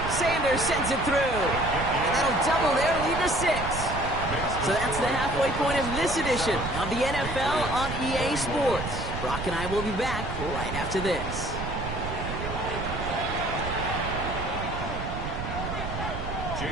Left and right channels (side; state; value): right; noise; rumble, 6 dB below the sound